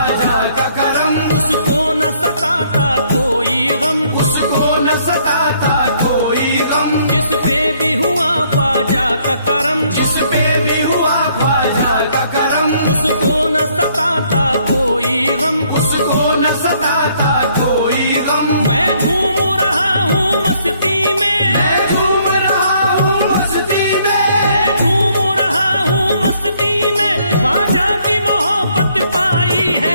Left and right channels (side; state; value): both; inverted; correlation -0.66